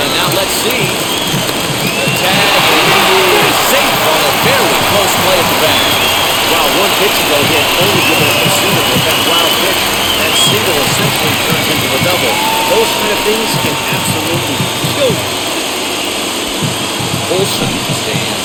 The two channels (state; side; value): identical; both; correlation 1.00